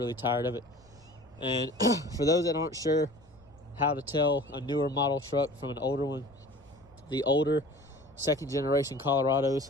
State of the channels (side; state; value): left; noise; rumble, 28 dB below the sound